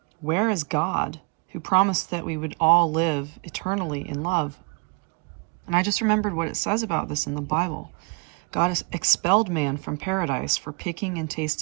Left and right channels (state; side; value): quieter; left; 31.2 dB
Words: Where is God, who promised that we would all live eternally in love? And I just remembered what it says about this in the Bible. God has expelled man from paradise for picking and